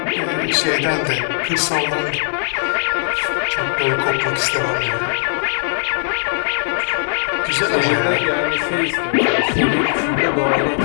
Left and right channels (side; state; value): right; silent; 56 dB below the other